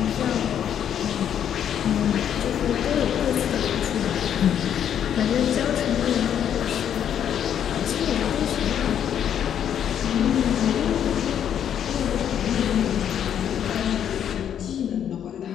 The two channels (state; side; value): quieter; right; 9.3 dB